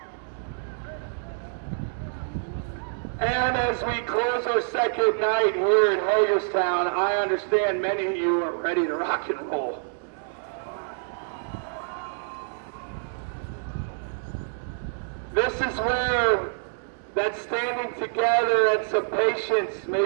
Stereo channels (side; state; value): left; silent; digital silence